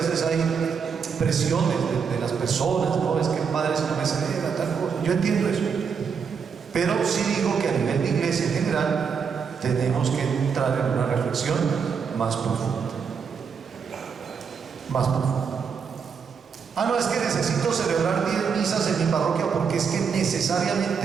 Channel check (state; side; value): quieter; left; 6.3 dB